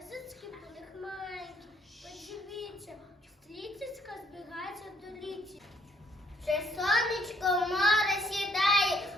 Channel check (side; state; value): both; normal; correlation 0.66